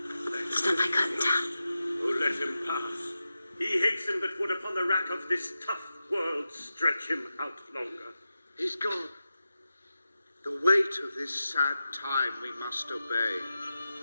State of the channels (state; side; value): inverted; both; correlation -0.92